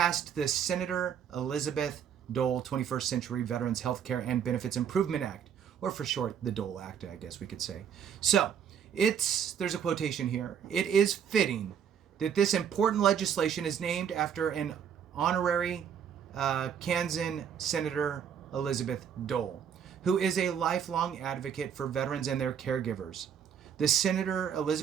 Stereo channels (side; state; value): left; quieter; 8.2 dB